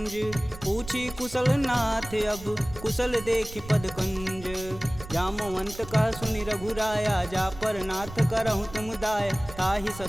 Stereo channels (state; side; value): noise; right; rumble, 14 dB below the sound